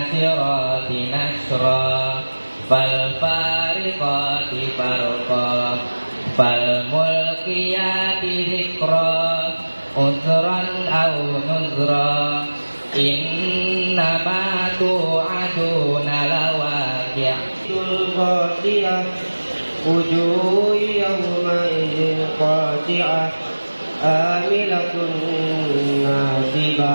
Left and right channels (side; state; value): both; inverted; correlation -1.00